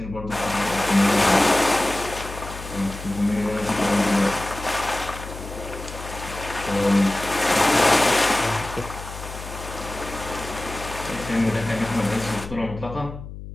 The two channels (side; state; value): left; noise; hum, 12 dB below the sound